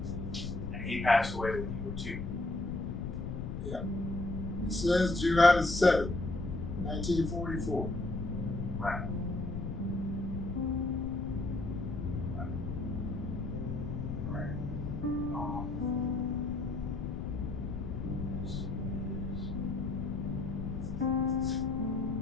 And he passed away when you were 2. It says July the 7th, 1944. Right. Right. This is.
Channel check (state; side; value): noise; left; rumble, 5 dB below the sound